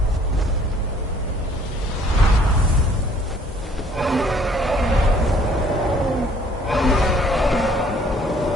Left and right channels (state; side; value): normal; both; correlation 0.59